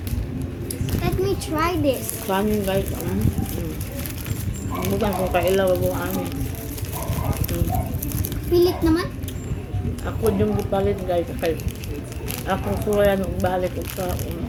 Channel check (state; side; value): identical; both; correlation 1.00